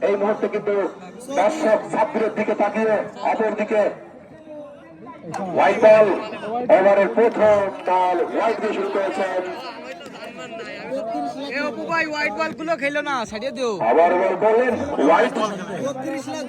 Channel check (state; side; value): identical; both; correlation 1.00